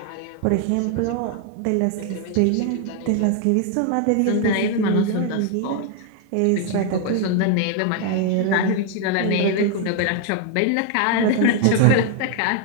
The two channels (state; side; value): different; both; correlation 0.01